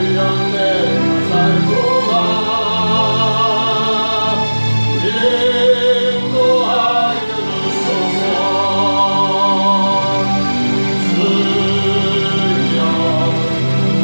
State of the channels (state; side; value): inverted; both; correlation -1.00